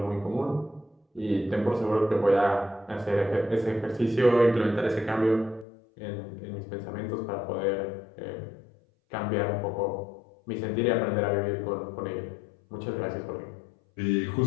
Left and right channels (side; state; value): right; drops out; at 5.7 s